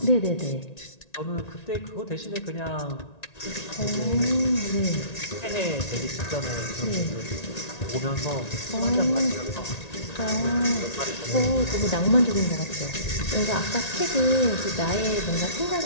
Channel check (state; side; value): late; right; 1.9 ms